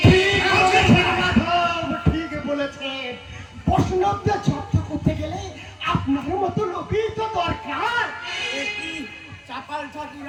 ঠিক বলেছে। বৈষ্ণবদের চর্চা করতে গেলে আপনার মতো লোকই তো দরকার। কি চাপাল ঠাকুর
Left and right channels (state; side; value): identical; both; correlation 1.00